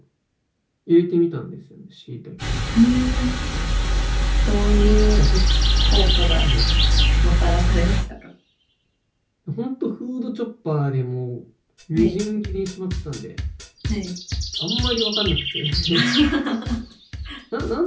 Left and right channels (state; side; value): identical; both; correlation 1.00